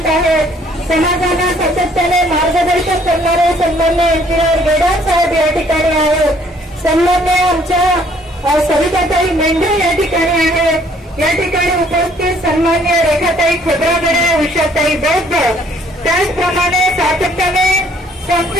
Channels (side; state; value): both; normal; correlation 0.62